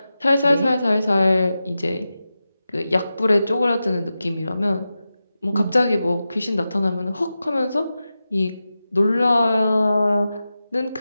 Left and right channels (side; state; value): both; inverted; correlation -0.92